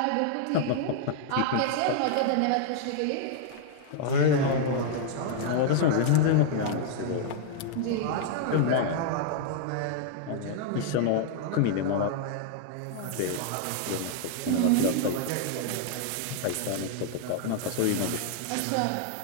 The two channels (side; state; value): both; different; correlation 0.00